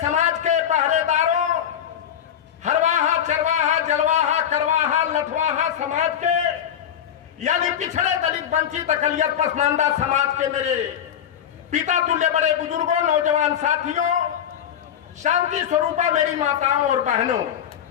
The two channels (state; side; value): quieter; right; 9.5 dB